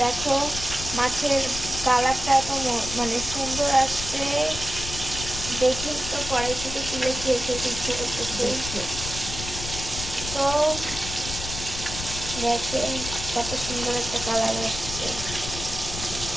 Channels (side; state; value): left; noise; rumble, 8 dB below the sound